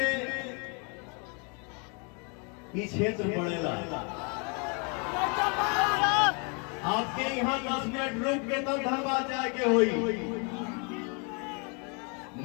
ये क्षेत्र पड़ेगा, आपके यहाँ 10 मिनट रुक के तब धनबाद जाके हुई।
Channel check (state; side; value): quieter; right; 35.2 dB